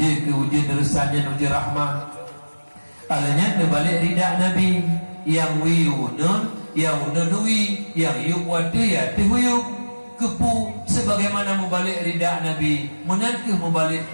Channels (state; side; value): inverted; both; correlation -1.00